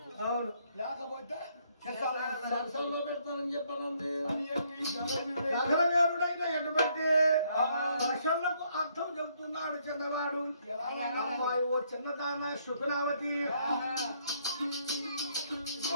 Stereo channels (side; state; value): both; inverted; correlation -0.70